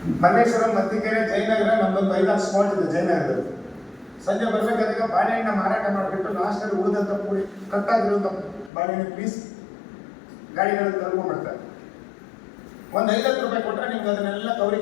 ಮಲ್ಲೇಶ್ವರಂ, ಮತ್ತಿಕೆರೆ, ಜಯನಗರ ನಮ್ದೊಂದು 5-6 ಸ್ಪಾಟ್ ಇದೆ ಜಯನಗರದಲ್ಲಿ. ಸಂಜೆ ಬರ್ಬೇಕಾದಾಗ ಬಾಳೆಹಣ್ಣ ಮಾರಾಟ ಮಾಡಿಬಿಟ್ಟು ಲಾಸ್ಟಲ್ಲಿ ಉಳಿದಂತ ಪೂರಿ ಕಟ್ಟಾಗಿರುವಂತ ಬಾಳೆಹಣ್ಣು ಪೀಸ್ ಗಾಡಿಗಳಲ್ಲಿ ತಗೊಂಡ್ಬಿಡ್ತಾರೆ. ಒಂದು 50 ರೂಪಾಯಿ ಕೊಟ್ಟರೆ ನಿಮ್ಗೆ ಅದನ್ನೆಲ್ಲ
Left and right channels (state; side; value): drops out; right; at 8.7 s